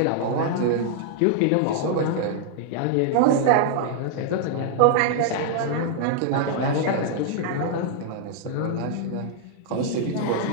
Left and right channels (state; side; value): different; both; correlation -0.01